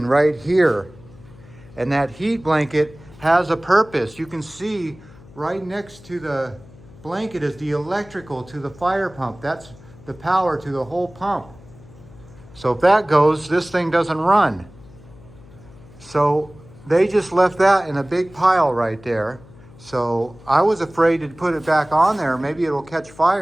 right here. And that heat blanket has a purpose. You can see right next to the blanket is the electrical to the fire pump. That's the power to the whole pump. So if that goes, this thing doesn't run. So they just left that in a big pile right there. So I was afraid to put it back on there. Maybe it'll catch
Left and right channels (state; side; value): noise; left; hum, 22 dB below the sound